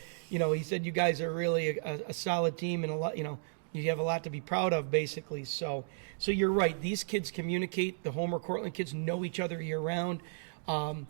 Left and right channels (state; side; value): silent; left; digital silence